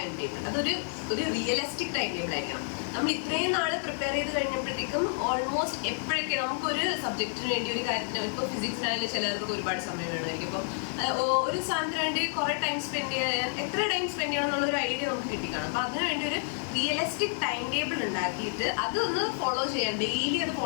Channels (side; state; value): right; silent; digital silence